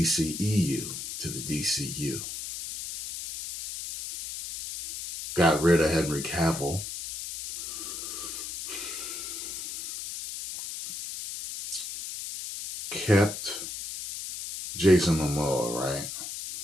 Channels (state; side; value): noise; left; hiss, 7 dB below the sound